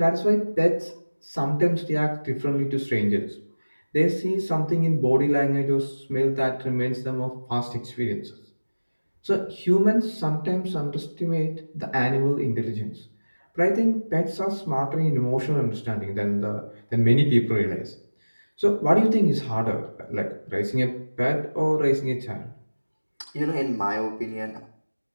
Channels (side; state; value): both; inverted; correlation -1.00